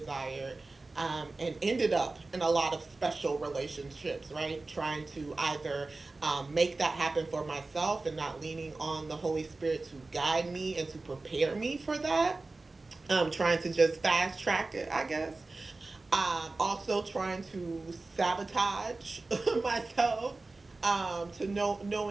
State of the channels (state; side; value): quieter; left; 3.4 dB